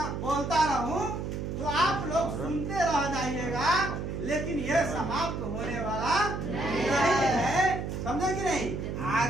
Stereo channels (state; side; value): noise; right; hum, 4 dB below the sound